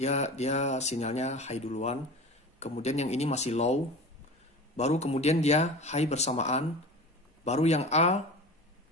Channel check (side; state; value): both; normal; correlation 0.34